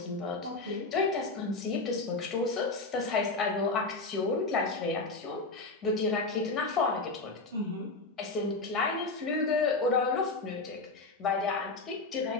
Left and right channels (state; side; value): quieter; right; 3.5 dB